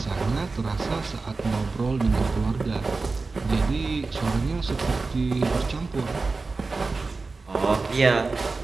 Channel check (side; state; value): left; quieter; 3.9 dB